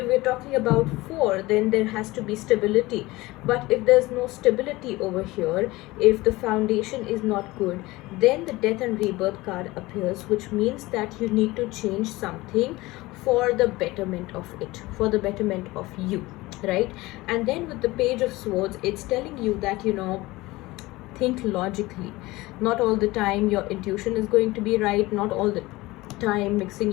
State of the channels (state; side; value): quieter; right; 20.2 dB